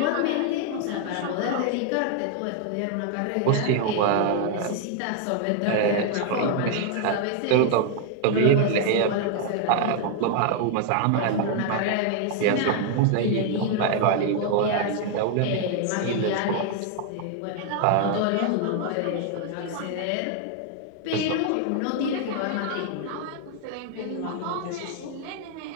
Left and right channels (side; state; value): both; different; correlation 0.00